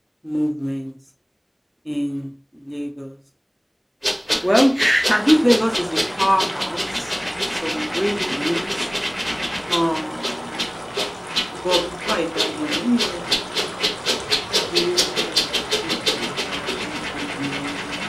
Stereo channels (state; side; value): identical; both; correlation 1.00